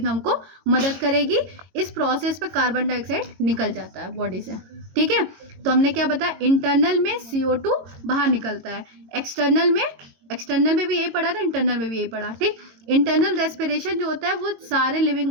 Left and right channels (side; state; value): left; late; 22 ms